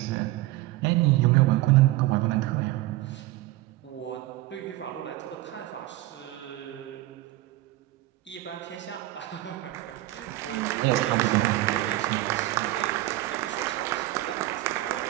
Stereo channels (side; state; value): left; quieter; 17.2 dB